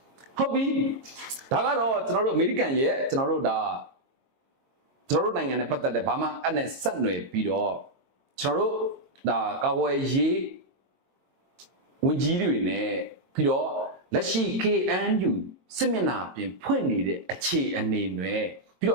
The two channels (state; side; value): late; left; 22 ms